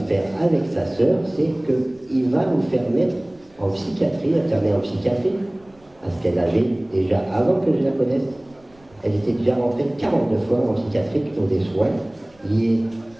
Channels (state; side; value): noise; right; rumble, 30 dB below the sound